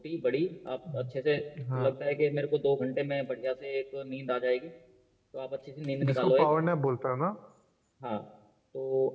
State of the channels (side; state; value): both; identical; correlation 1.00